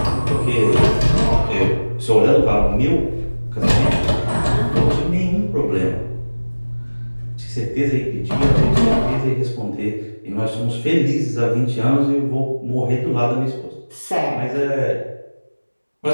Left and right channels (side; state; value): both; inverted; correlation -1.00